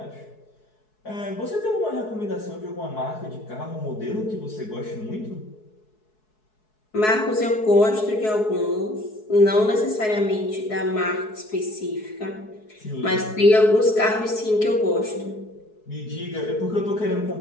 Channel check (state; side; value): late; right; 4.7 ms